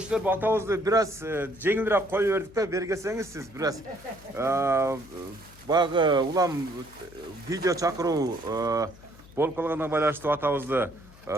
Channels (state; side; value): noise; left; hum, 22 dB below the sound